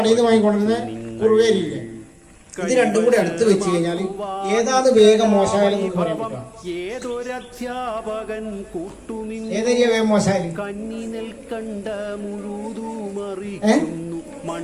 ഇത് രണ്ടും കൂടി അടുത്ത് വെച്ച് കഴിഞ്ഞാൽ ഏതാണ് വേഗം മോശമായാലും ഏതൊരധ്യാപകൻ ഏതൊരു വേഗം മോശമായാലും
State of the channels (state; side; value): identical; both; correlation 1.00